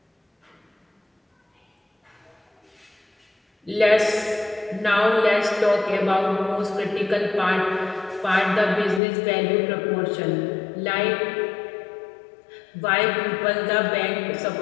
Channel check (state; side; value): drops out; right; at 9.0 s